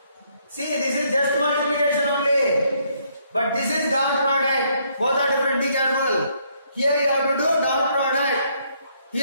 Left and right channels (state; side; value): inverted; both; correlation -0.70